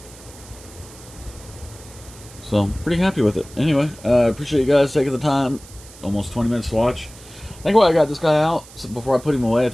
So, pretty happy with it. Anyway, I appreciate you guys taking the time. Almost 20 minutes to watch. think while I got this guy out, so before I put him away, I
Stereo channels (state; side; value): noise; right; hiss, 20 dB below the sound